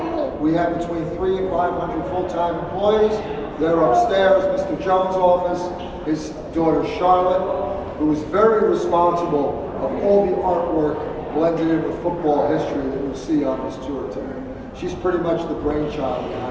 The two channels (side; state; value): both; identical; correlation 1.00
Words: We have between 300 and 500 full-time employees. They're upstairs, Mr. Jones' office, his daughter Charlotte, who is very responsible of all the artwork blended in with football history that you'll see on this tour today. She's pretty much the brainchild